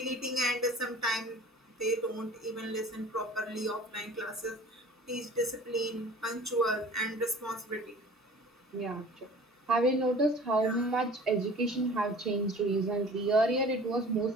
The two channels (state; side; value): normal; both; correlation 0.45